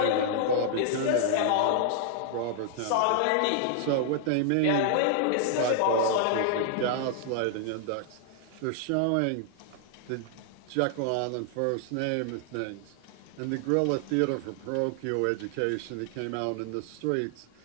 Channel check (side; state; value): both; different; correlation 0.00